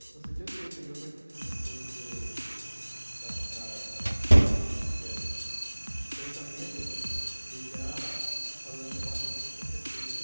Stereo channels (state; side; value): inverted; both; correlation -1.00